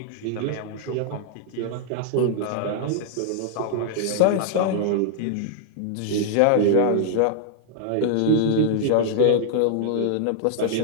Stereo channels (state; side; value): different; both; correlation -0.01